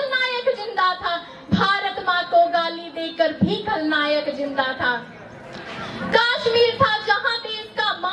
जिंदा था, भारत माँ को गाली देकर भी खलनायक जिंदा था। कश्मीर था जहां देश का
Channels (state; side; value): identical; both; correlation 1.00